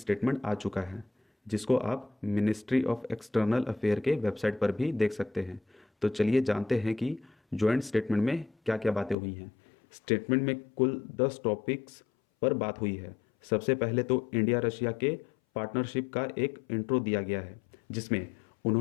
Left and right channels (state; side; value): drops out; right; at 9.2 s